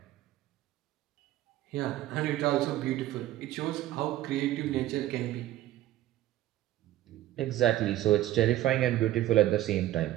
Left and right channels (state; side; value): quieter; left; 14.3 dB